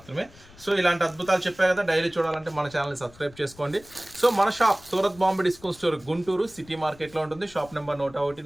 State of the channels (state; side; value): noise; left; rumble, 23 dB below the sound